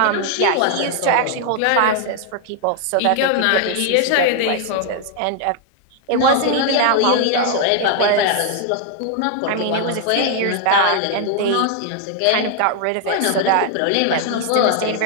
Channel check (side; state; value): both; different; correlation 0.00